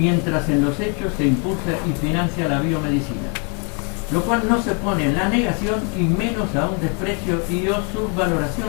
en los hechos se impulsa y financia la biomedicina, lo cual no se pone en la negación y menos a un desprecio y o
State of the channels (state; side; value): quieter; right; 37.5 dB